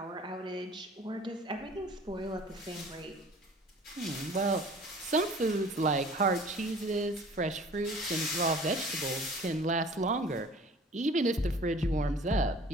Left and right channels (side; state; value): both; normal; correlation 0.48